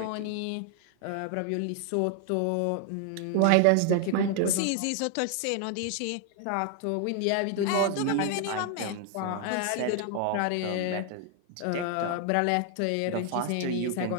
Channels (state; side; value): different; both; correlation 0.00